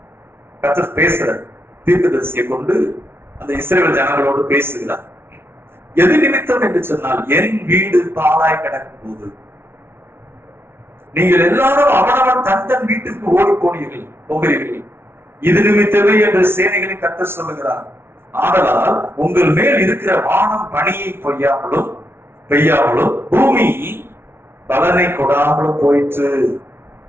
கர்த்தர் பேசுற தீர்க்கதரிசியை கொண்டு அந்த இஸ்ரவேல் ஜனங்களோடு பேசுகிறார். எது நிமித்தம் என்று சொன்னால், என் வீடு பாழாய் கிடக்கும் போது நீங்கள் எல்லாரும் அவனவன் தன் வீட்டுக்கு ஓடி போகிறீர்கள். இது நிமித்தமே என்று சேனைகளின் கர்த்தர் சொல்லுகிறார். ஆதலால் உங்கள் மேல் இருக்கிற வானம் பனியை பெய்யாமலும் பூமி பலனை கொடாமலும் போயிற்று.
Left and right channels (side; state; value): left; late; 0.12 ms